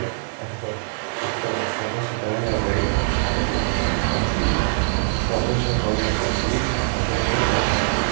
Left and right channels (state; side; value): silent; left; 63 dB below the other